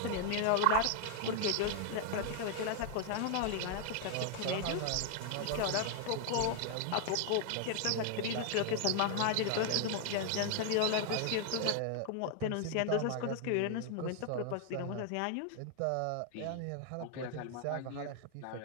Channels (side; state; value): both; different; correlation 0.00